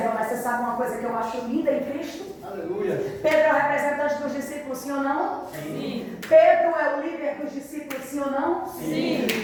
mas você sabe uma coisa que eu acho linda em Cristo? Aleluia. Pedro é o representante dos discípulos, sim ou não? Sim. Pedro é o líder dos discípulos, sim ou não? Sim.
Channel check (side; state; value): both; identical; correlation 1.00